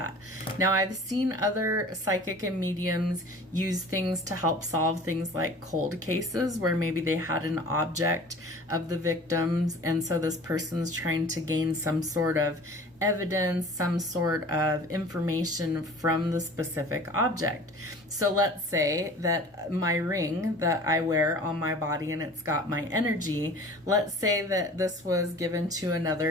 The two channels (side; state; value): both; normal; correlation 0.44